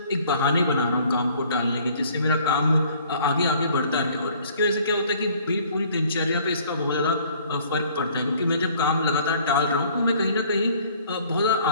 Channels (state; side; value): inverted; both; correlation -0.56